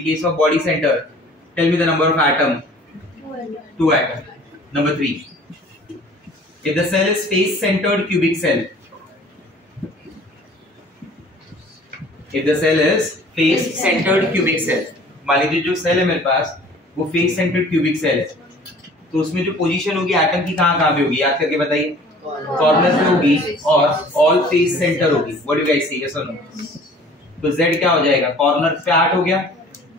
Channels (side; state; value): both; normal; correlation 0.50